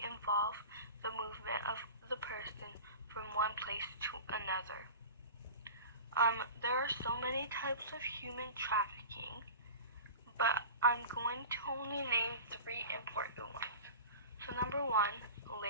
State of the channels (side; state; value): both; inverted; correlation -0.35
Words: involve the movement of the person from one place to another. There are so many types of human trafficking, but I'm going to only name three important ones. So number one,